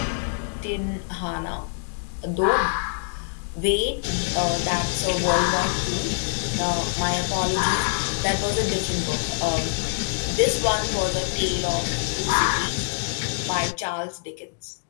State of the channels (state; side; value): silent; right; digital silence